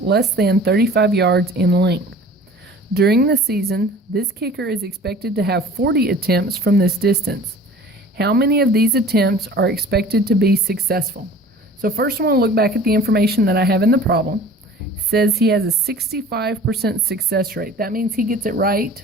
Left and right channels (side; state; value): both; normal; correlation 0.45